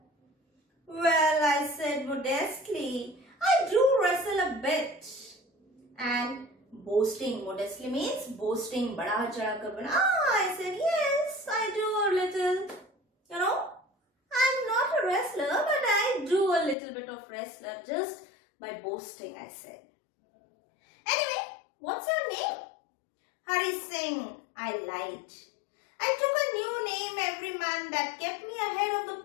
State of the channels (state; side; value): drops out; right; at 16.8 s